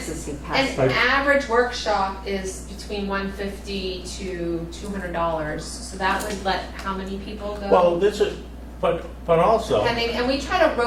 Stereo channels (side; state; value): both; identical; correlation 1.00